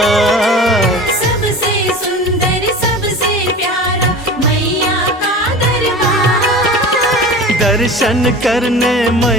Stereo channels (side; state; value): both; normal; correlation 0.35